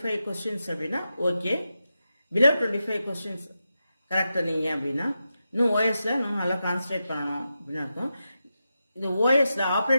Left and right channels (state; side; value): inverted; both; correlation -0.89